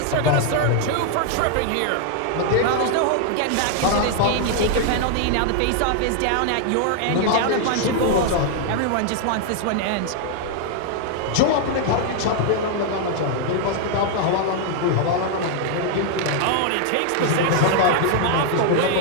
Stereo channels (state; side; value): different; both; correlation 0.00